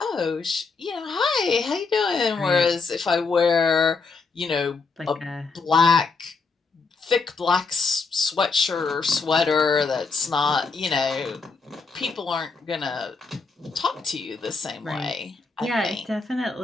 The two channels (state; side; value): quieter; right; 4.4 dB